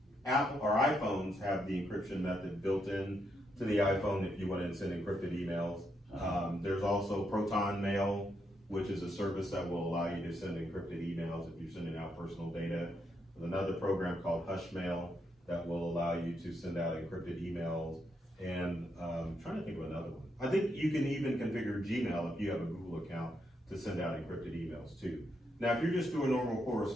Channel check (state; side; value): normal; both; correlation 0.79